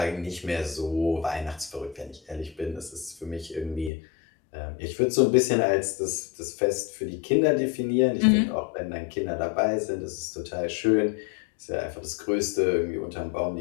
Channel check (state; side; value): drops out; right; at 3.9 s